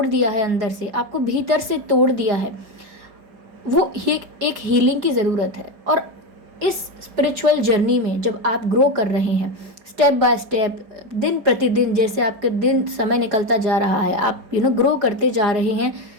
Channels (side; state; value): left; late; 4.9 ms